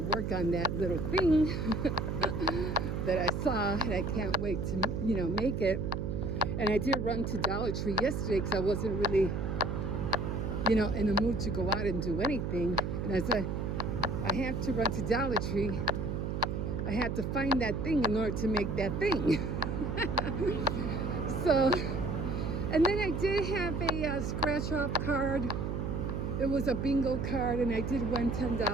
work on that little thing that I saw, and I can't wait to, make it. And I did run to Dollar Tree yesterday because I wasn't really, in the mood to go out and do anything. And I said, I have to run to Dollar Tree. I had to find that thing in order to make that thing. So, and then I did have a scratch-off card. It was a bingo card, and I did win $10.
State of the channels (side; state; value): right; noise; hum, 2 dB below the sound